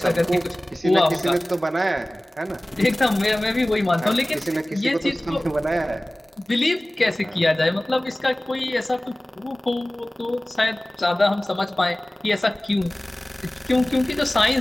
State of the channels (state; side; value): normal; both; correlation 0.98